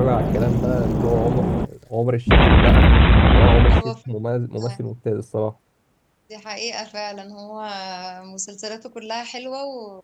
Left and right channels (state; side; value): identical; both; correlation 1.00